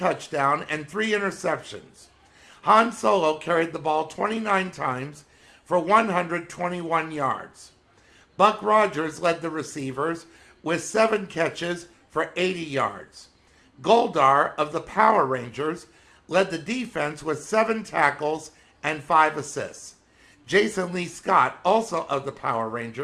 and 3 interceptions. Han Solo carried the ball 29 times for 121 yards. Buck Rogers led the receivers with 7 catches for 80 yards. Goldar of the Power Rangers led the defense with 7 tackles and 5 assists. Jason Lee Scott, also of the Power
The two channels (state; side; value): identical; both; correlation 1.00